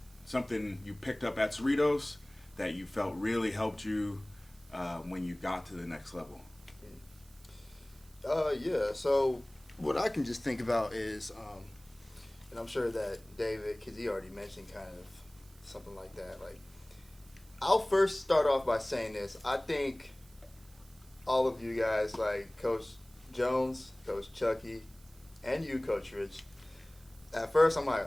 something you picked up at Cerritos that you felt really helped you when you got to the next level. Yeah, so what I can just think about is, and I'm sure that David, because he already mentioned kind of something like that, like, I'll first start off by saying this. I think all of you guys, like Coach Jones, Coach Chucky, and you, Coach Rich, at first I'm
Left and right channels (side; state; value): right; noise; hiss, 26 dB below the sound